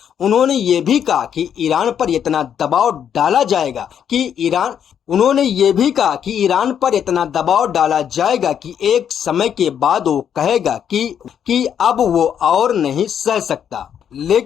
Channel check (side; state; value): right; quieter; 8.7 dB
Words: उन्होंने ये भी कहा कि ईरान पर इतना दबाव डाला जाएगा कि एक समय के बाद वो कहेगा कि अब वो और नहीं सह सकता।